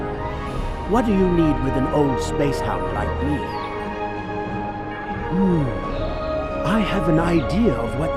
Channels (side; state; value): both; identical; correlation 1.00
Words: What do you need with an old space hound like me? I have an idea of